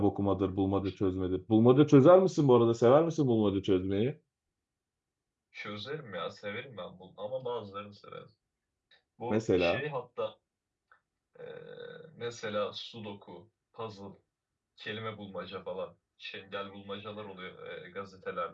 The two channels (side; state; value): both; identical; correlation 1.00